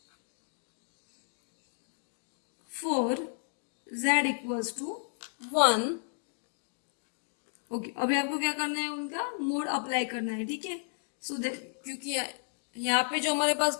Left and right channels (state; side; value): silent; right; digital silence